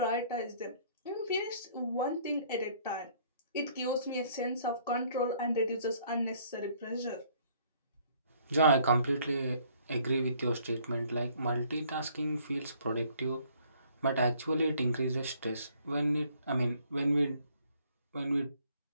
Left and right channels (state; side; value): inverted; both; correlation -0.61